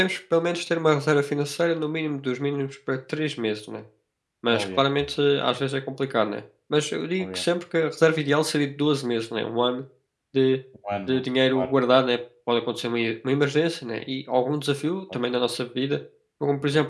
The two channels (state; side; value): identical; both; correlation 1.00